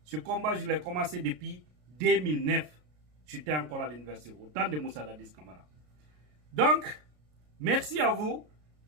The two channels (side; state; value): left; late; 33 ms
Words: ce combat, je l'ai commencé depuis 2009. J'étais encore à l'université, au temps de Moussa Dadis Camara. Donc, merci à vous,